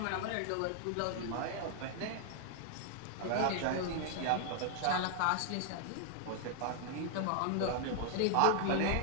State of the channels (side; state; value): both; different; correlation 0.00